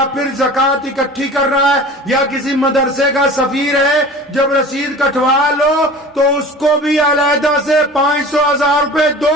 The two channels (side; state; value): both; normal; correlation 0.40